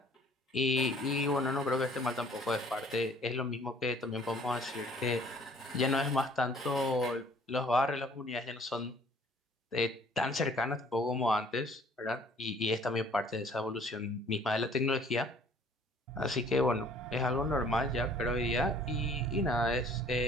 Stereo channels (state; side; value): normal; both; correlation 0.56